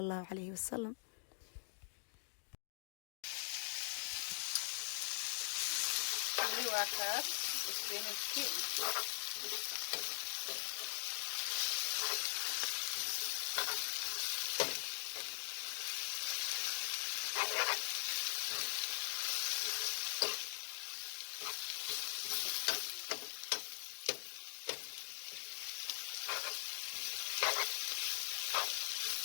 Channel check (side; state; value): right; silent; digital silence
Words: allahu calayhi wasalam.